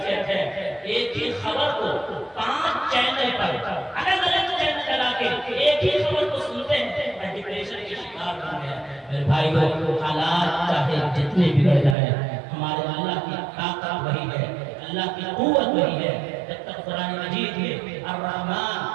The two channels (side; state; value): left; drops out; at 12.0 s